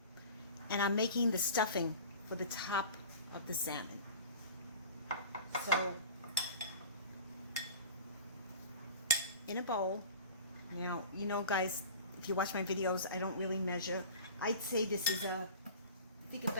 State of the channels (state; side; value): inverted; both; correlation -0.38